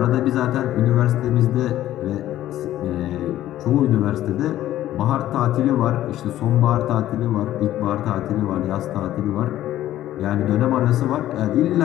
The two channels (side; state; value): right; quieter; 13.4 dB